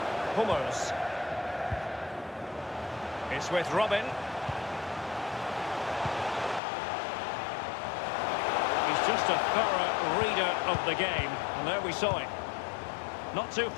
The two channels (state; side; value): drops out; right; at 6.6 s